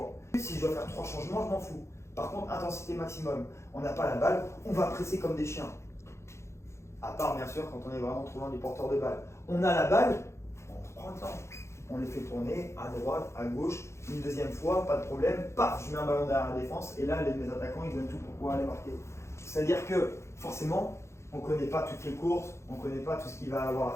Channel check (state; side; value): late; right; 0.13 ms